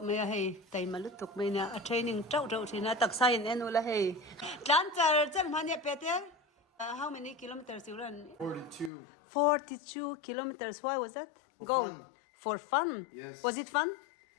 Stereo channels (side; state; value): right; drops out; at 8.9 s